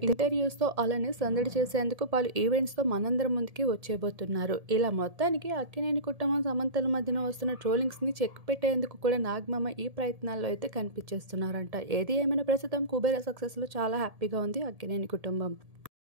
ఇంటర్వ్యూస్ తో అలానే సందడి చేసేందుకు పలు ఈవెంట్స్ తో మనందరం ముందుకి వచ్చేబోతున్నారు. ఇలా మొత్తానికి అక్కినేని కుటుంబం సమంతల మధ్యన వస్తున్న ట్రోలింగ్స్ ని చెక్ పెట్టేందుకు కూడా నాగమామ ఈ ప్రయత్నాల్లో అయితే కనిపించేస్తున్నారంట. ఏది ఏమైనా ప్రస్తుతం కుబేర సక్సెస్ లో చాలా హ్యాపీగా ఉంది అక్కినేని కుటుంబం.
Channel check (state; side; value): late; left; 1.7 ms